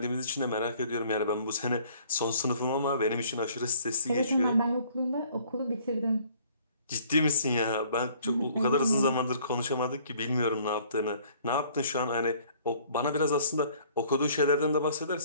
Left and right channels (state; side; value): inverted; both; correlation -0.58